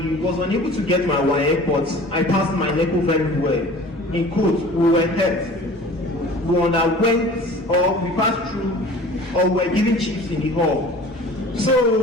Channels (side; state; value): both; normal; correlation 0.44